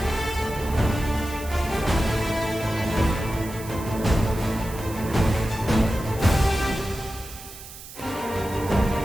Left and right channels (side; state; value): right; noise; hiss, 15 dB below the sound